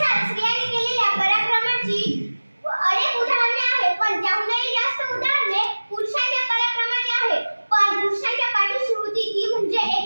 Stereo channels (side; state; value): both; inverted; correlation -1.00